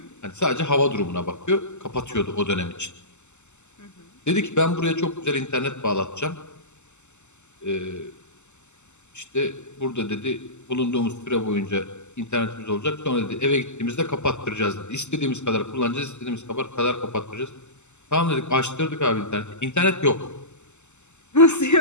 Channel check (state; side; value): late; right; 0.83 ms